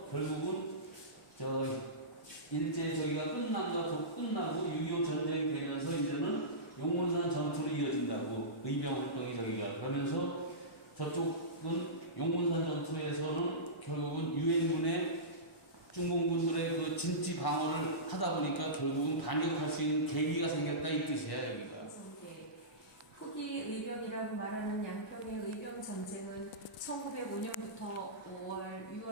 결국은 일제 저기가 끝나고 6.25 전쟁이 되면서 이제는 용문산 전투로 이어진다고 의병 활동이 저기가 그러면서 저쪽은 용문산 전투에서는 결국은 유엔군의 중공군들의 그 진지 방어를 하다 보니까 결국은 반격할 수 있는 계기가 생겼다 이 뜻이야 여기가. 후기 의병이라고 말하는 양평의 의병 전쟁은 1905년부터 5월,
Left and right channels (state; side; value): normal; both; correlation -0.20